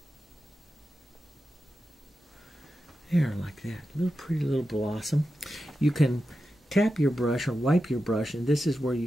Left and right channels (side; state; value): both; normal; correlation 0.91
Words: There, like that. Little pretty little blossom. You can tap your brush or wipe your brush, and this is where you